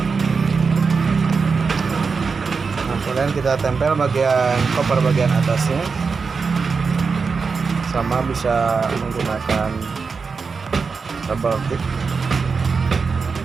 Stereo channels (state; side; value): quieter; left; 5.0 dB